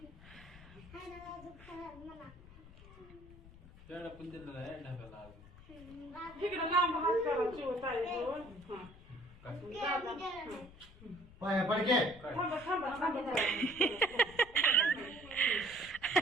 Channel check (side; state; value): left; noise; rumble, 20 dB below the sound